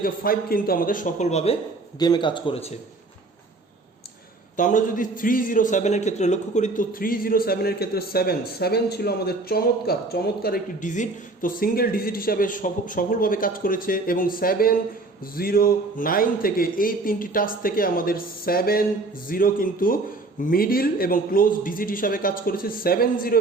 5 কিন্তু আমাদের সফলভাবে গেমে কাজ করেছে। তো আমরা যদি 307-এর ক্ষেত্রে লক্ষ্য করি, তো 307-এর ক্ষেত্রে 7 ছিল আমাদের চমৎকার একটি ডিজিট। তো সিঙ্গেল ডিজিট হিসাবে সফলভাবে কাজ করেছে এবং 7-0-9 থেকে এই তিনটি টাচ থেকে আমাদের 7-0 কিন্তু মিডিল এবং ক্লোজ ডিজিট হিসাবে কাজ করেছে। 7-0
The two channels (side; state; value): left; quieter; 3.3 dB